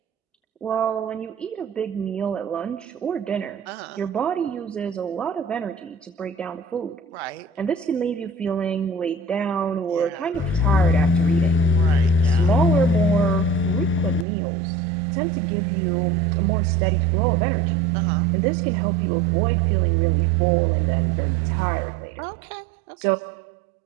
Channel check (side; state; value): left; drops out; at 14.2 s